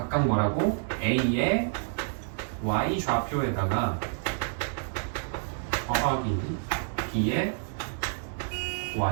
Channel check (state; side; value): silent; left; 58 dB below the other